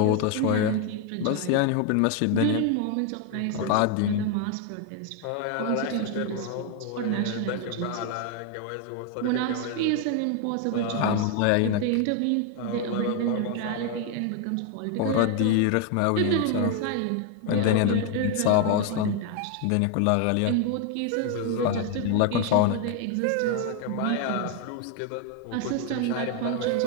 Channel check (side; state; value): both; different; correlation 0.01